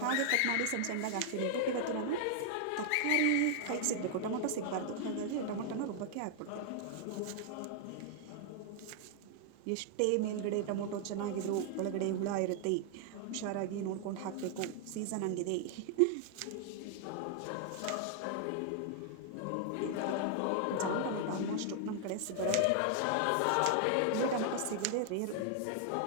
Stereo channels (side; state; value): both; different; correlation 0.00